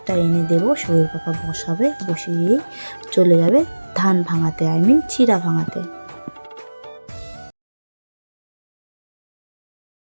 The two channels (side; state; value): both; inverted; correlation -1.00